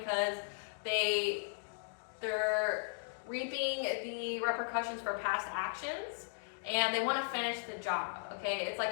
they're reaping the repercussions for past actions, and they want to finish the job, okay? It's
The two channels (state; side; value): silent; right; digital silence